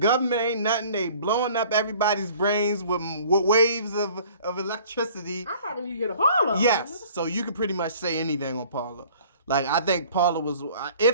ain't nothing. They blowing up everybody's brains with waves of electricity. I probably need to get a Parlor. Yes. So you can pretty much say anything on Parlor. Like, I think Parler was,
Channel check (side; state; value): both; inverted; correlation -0.51